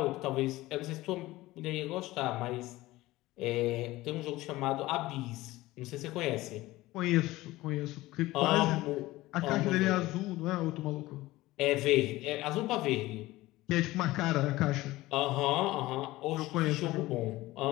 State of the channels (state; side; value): quieter; right; 18.2 dB